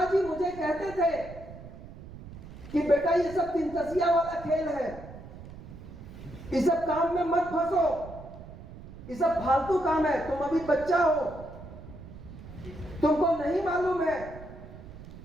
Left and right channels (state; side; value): noise; right; rumble, 15 dB below the sound